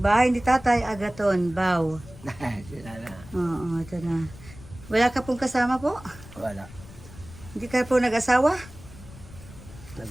bahay ni Tatay Agaton, Bao. Sila na. Oo, ito na. Wala ka pong kasama po? Wala. Hindi ka po nag-asawa?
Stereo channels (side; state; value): left; noise; rumble, 18 dB below the sound